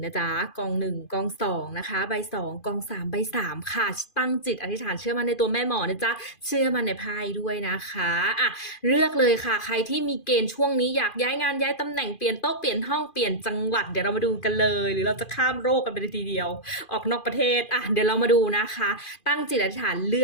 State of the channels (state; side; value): late; right; 2.5 ms